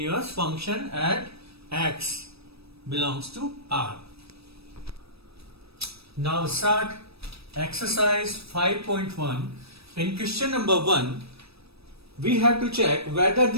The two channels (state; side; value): late; left; 0.78 ms